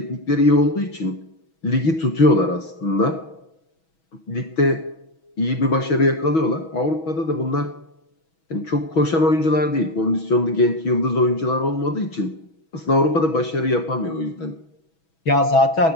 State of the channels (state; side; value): late; right; 6.2 ms